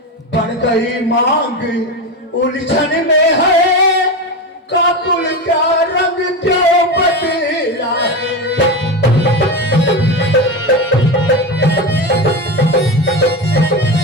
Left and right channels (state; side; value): normal; both; correlation 0.19